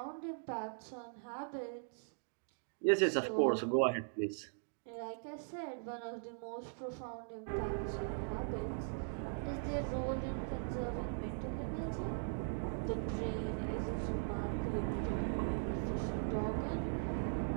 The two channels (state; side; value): silent; left; digital silence